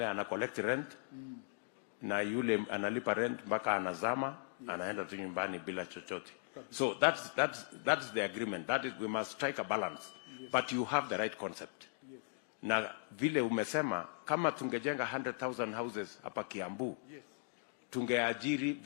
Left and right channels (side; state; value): right; silent; digital silence